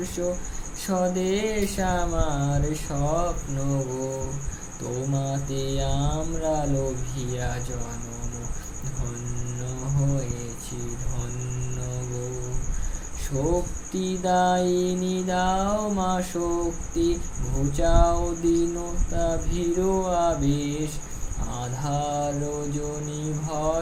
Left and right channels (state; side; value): identical; both; correlation 1.00